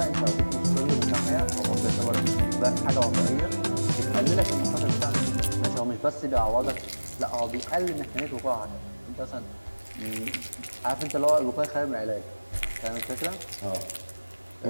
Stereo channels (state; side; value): inverted; both; correlation -1.00